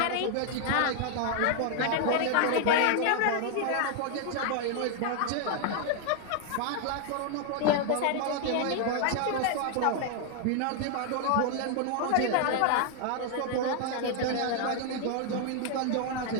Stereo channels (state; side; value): different; both; correlation 0.00